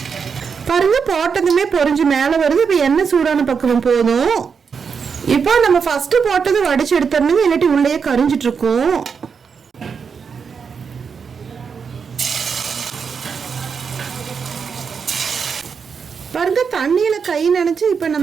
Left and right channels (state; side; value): quieter; left; 6.1 dB